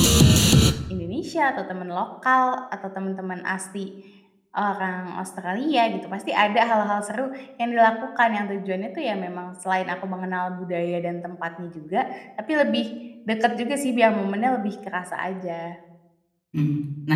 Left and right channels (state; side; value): identical; both; correlation 1.00